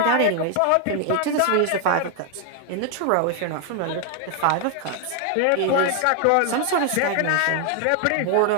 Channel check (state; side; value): different; both; correlation 0.00